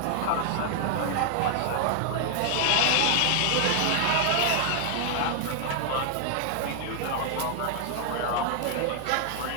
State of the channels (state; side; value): different; both; correlation 0.00